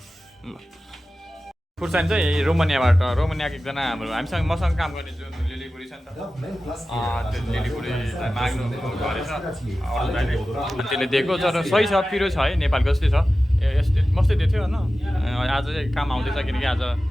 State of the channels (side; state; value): both; normal; correlation 0.95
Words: ल खुर्सानी चाहिँ रोमानियाको एकजना हाम्रो हामीसँग मसँग काम गर्ने जुन लिलीबुढी छ नि त त्यो लिलीबुढीलाई माग्नु गरेछ त्यसले दिएको तर सही छ पिरो छ है नेपालको जस्तै छ यस्तै मस्तै दिएको थियो होइन आज चाहिँ काम आउँदैछ किनकि आज